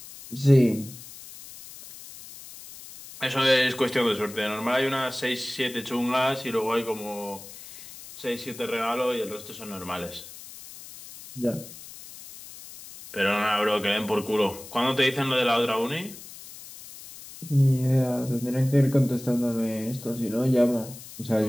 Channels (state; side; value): noise; left; hiss, 16 dB below the sound